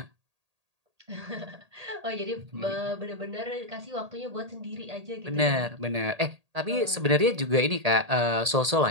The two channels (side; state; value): left; late; 1.8 ms